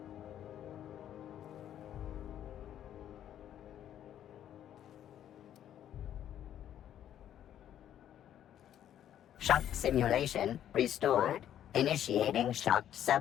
Shock simulation restored. Initiating shock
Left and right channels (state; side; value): quieter; right; 10.7 dB